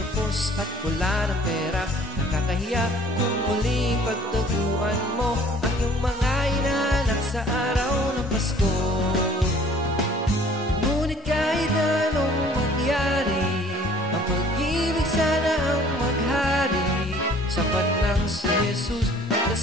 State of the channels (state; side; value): normal; both; correlation 0.53